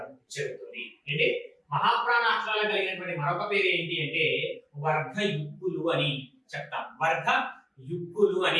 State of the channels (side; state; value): both; identical; correlation 1.00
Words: జరుగుతుంది. అంటే మహాప్రాణ అక్షరాలు కలిగినటువంటి మరొక పేరు ఏంటి అంటే వర్గయుక్తులు అని చెప్తాం. వర్గ యుక్కులు